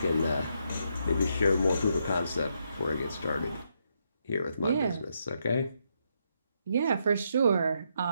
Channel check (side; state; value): both; inverted; correlation -0.78